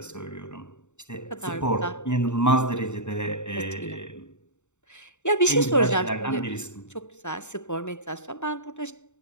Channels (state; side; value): late; right; 0.84 ms